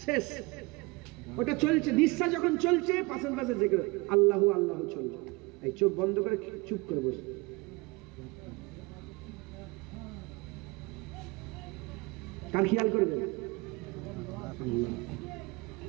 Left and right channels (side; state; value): left; quieter; 25.0 dB